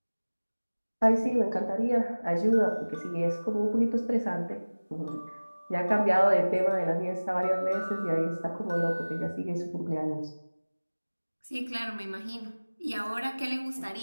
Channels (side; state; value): both; inverted; correlation -1.00